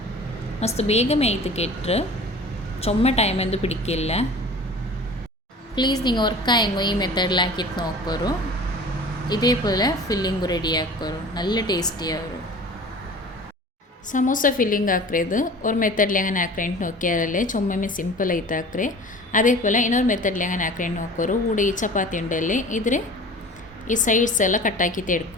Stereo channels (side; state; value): both; normal; correlation 0.41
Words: ಮಸ್ತ್ ಬೇಗ ಮೇಯ್ತು ಕೆಟ್ಟರು ചുമ്മ ടൈം എന്ത് പിടിക്കില്ല. പ്ലീസ് നിങ്ങൾ ഉറക്കായെങ്കോ ഈ മെത്തേഡിൽ ആക്കിയിട്ട് നോക്കോರು ഇതേപോലെ ഫില്ലിംഗ് റെഡിയാക്കോರು നല്ല ടേസ്റ്റിയാവും. ಸಮೋಸ ಫಿಲ್ಲಿಂಗ್ ಹಾಕ್ರೇದು ஒரு மெத்தடில் எങ്ങനെ ಹಾಕ್ರೇಂಟ್ ನೋಕ್ಯಾರಲ್ಲೇ ಚೊಮ್ಮೆ ಸಿಂಪಲ್ ಐತೆ ಹಾಕ್ರೆ അതേപോലെ ಇನ್ನೊಂದು ಮೆಥಡ್ಲಿ എങ്ങനെ ಹಾಕ್ರೇಂಟ್ ನೋಕೋರು ಕೂಡ ಈ ಚಪಾತಿ ಉಂಡಲ್ಲಿ ಇದ್ರೆ ಈ ಸೈಡ್ಸ್ ಎಲ್ಲ ಕಟ್ಟಾಕಿಟ್ಟು